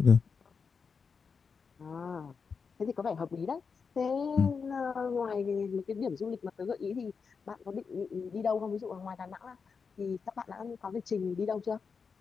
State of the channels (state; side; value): quieter; right; 5.5 dB